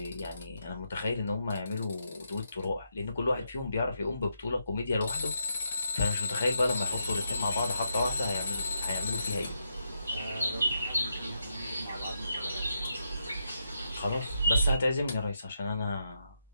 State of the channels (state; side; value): inverted; both; correlation -0.81